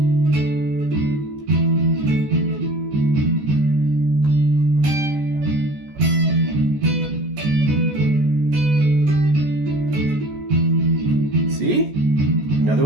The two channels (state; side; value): late; left; 14 ms